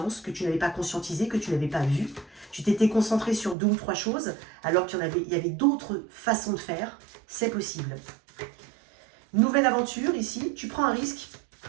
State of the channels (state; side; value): drops out; left; at 3.6 s